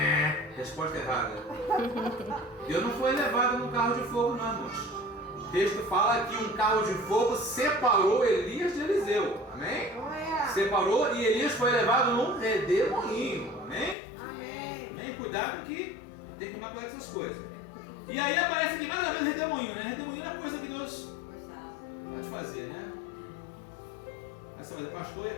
Resposta errada. Deus não foi levado no carro de fogo não, irmãos. O texto fala que um carro de fogo separou Elias de Eliseu. Amém? Separou e Elias foi levado num redemoinho. Amém? Amém? Cuidado que tem que tomar cuidado com essas coisas. E aí aparece aqui mais uma vez redemoinho, né? Redemoinho é coisa que Deus pode fazer, né? Aí você vai dizer, pastor, e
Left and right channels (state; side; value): drops out; right; at 14.0 s